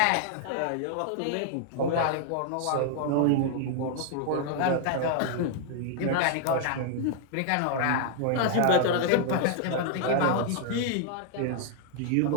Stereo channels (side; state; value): both; different; correlation 0.00